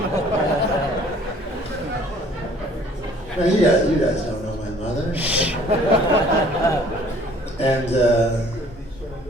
you guys don't know my mother. And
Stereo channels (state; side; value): normal; both; correlation 0.56